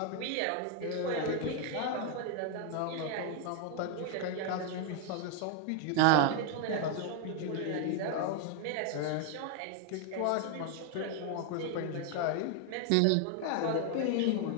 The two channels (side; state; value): both; different; correlation 0.01